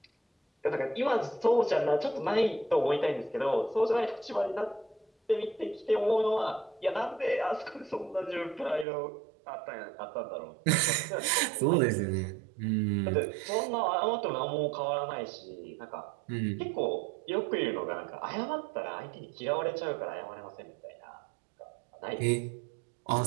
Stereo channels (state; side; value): drops out; left; at 8.8 s